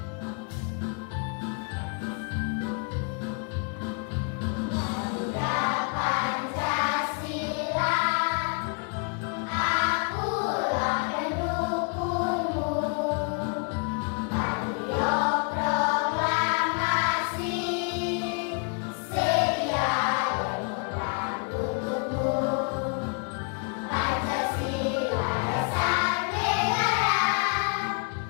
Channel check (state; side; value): quieter; right; 38.1 dB